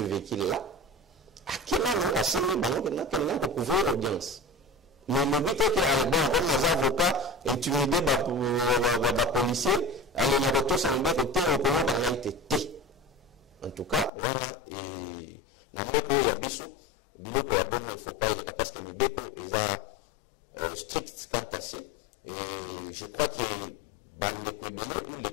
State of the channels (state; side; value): drops out; right; at 14.1 s